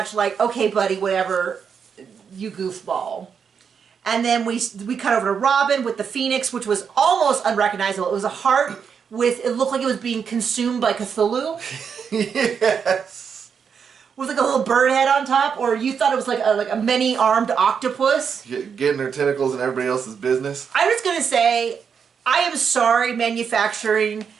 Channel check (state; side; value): quieter; left; 6.7 dB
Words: like, okay, buddy, whatever, you goofball. And then we cut over to Robin with the Phoenix, which was almost unrecognizable. It was a heart it looked like it was being consumed by Cthulhu. Yes. With like a little bird head on top, or you thought it was like a many-armed octopus. Getting her tentacles in everybody else's business. I was gonna say, I am sorry, manufacturing,